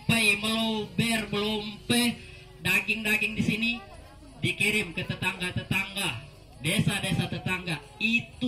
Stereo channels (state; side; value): identical; both; correlation 1.00